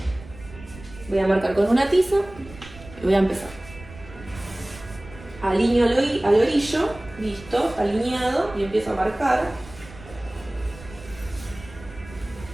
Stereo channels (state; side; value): noise; right; rumble, 18 dB below the sound